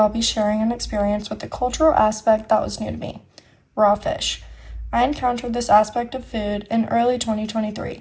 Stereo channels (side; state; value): both; identical; correlation 1.00